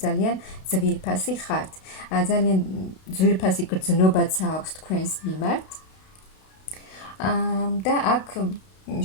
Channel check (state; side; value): late; right; 32 ms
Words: ძალიან ძვირფასი ხართ. ძალიან ძვირფასი გრძნობაც აქვს თქვენს მიმართ. და აქ